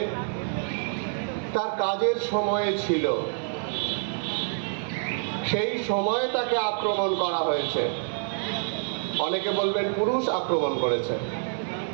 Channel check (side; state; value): left; silent; 57 dB below the other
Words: তার কাজের সময়ে ছিল। সেই সময়ে তাকে আক্রমণ করা হয়েছে। অনেকে বলবেন পুরুষ আক্রমণ করেছে,